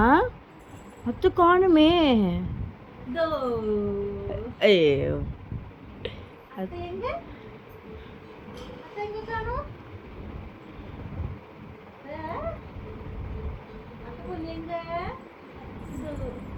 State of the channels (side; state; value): both; identical; correlation 1.00